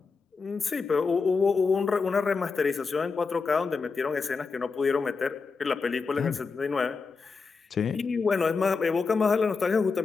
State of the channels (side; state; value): right; quieter; 4.7 dB